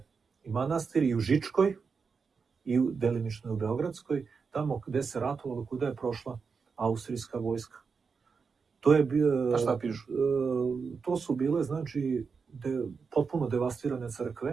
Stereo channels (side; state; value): left; quieter; 5.3 dB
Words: i manastiri i u Žičkoj i delimično u Beogradskoj, tamo gde se ratovalo, kuda je prošla austrijska vojska. To je A šta pišu? To su bile, znači, potpuno devastirane